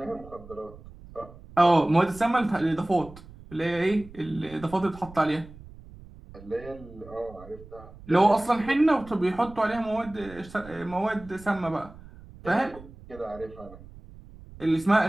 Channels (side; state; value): right; noise; rumble, 19 dB below the sound